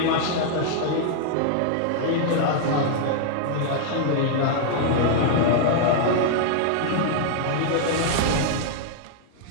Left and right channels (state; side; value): different; both; correlation -0.01